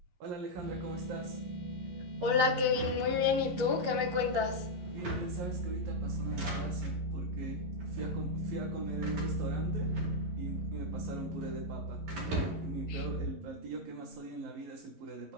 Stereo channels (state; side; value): late; left; 11 ms